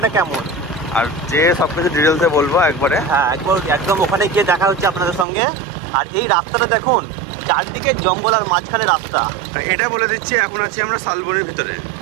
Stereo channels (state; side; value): drops out; left; at 5.2 s